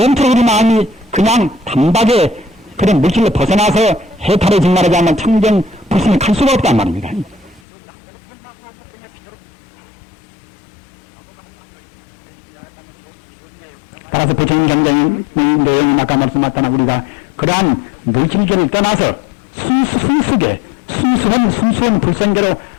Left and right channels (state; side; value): drops out; right; at 7.6 s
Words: 우리 마음이 그냥 단박에 그런 물질로 벗어나서 해탈을 말하지 않는 청정 불신을 갈 수가 없단 말입니다. 따라서 부처님 경전의 내용이 아까 말씀하셨다나 우리가 그러한 물질계를 떠나서 순수한 불성계로